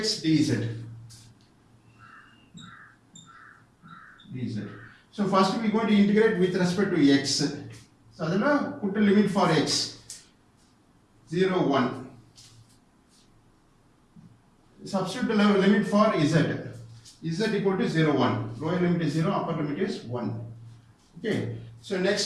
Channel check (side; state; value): both; identical; correlation 1.00